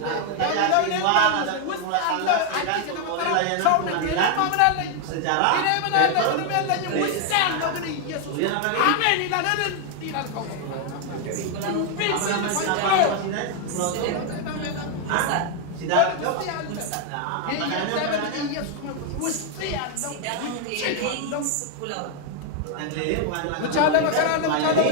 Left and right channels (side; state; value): both; different; correlation 0.00